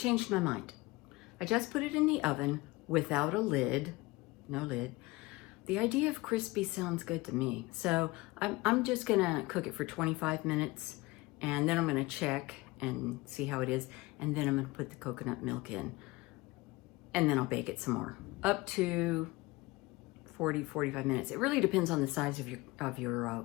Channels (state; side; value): quieter; right; 21.8 dB